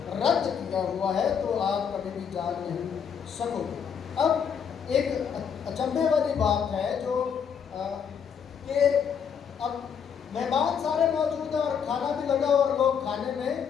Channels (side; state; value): right; quieter; 7.3 dB